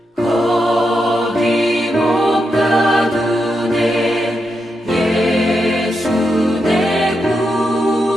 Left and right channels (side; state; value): both; normal; correlation 0.85